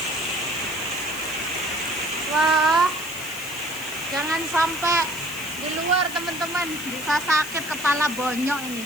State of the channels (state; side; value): noise; left; hiss, 12 dB below the sound